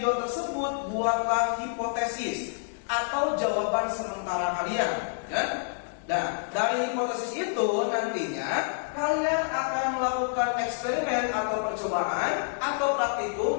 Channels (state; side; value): silent; right; digital silence